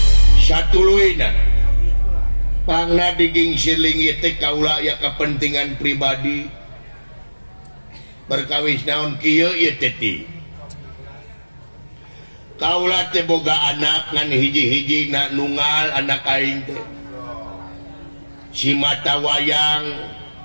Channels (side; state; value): both; inverted; correlation -1.00